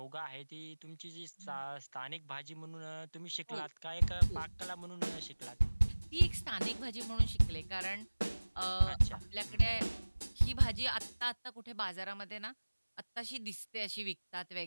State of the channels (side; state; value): both; inverted; correlation -1.00